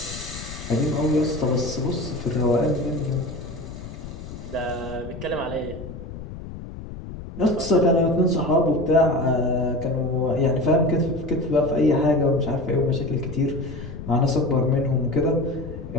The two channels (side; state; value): left; noise; rumble, 11 dB below the sound